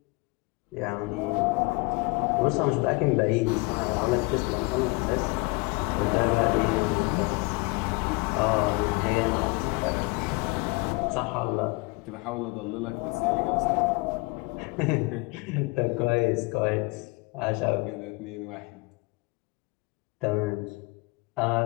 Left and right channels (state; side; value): quieter; right; 26.1 dB